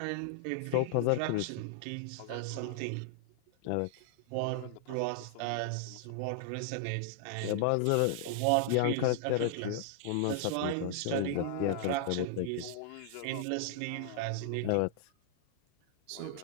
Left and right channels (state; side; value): different; both; correlation -0.01